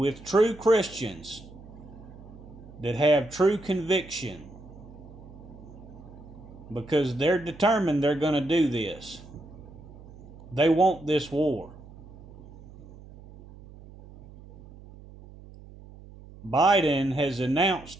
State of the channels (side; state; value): right; noise; hum, 19 dB below the sound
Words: true Christians that have true conviction, because they're determined they're going to do this. They want this war. Biden has